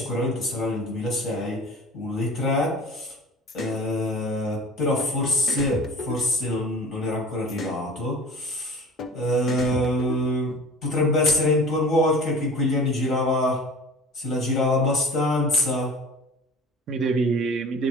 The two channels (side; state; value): both; normal; correlation 0.42